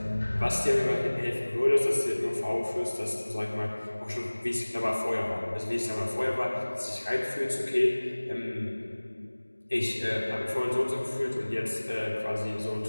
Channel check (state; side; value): inverted; both; correlation -1.00